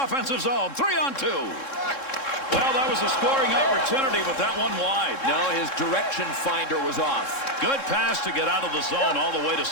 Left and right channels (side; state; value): right; late; 3.7 ms